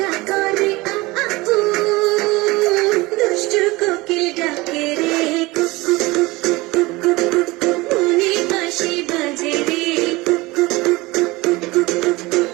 করে আ আ উ, দুষ্টু কোকিল ডাকে রে কুকু কুকু কুকু কুকু, মনে বাঁশি বাজে রে কুকু কুকু কুকু কুকু,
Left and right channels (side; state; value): left; quieter; 21.7 dB